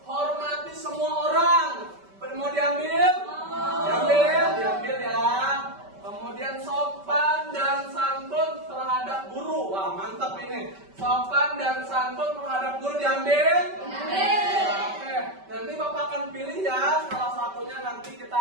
Hormati semua orang. Mau diambil? Diambil ya. Kemudian sopan dan santun terhadap guru. Wah, mantap ini. Sopan dan santun terhadap guru diambil? Oke. Nanti Bapak akan pilih ya. Salah satunya nanti kita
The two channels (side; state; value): left; late; 5.2 ms